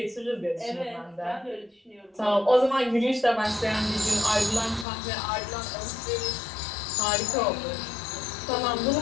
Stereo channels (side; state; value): right; drops out; at 4.9 s